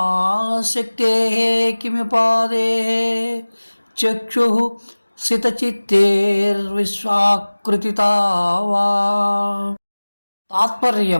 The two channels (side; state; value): both; inverted; correlation -1.00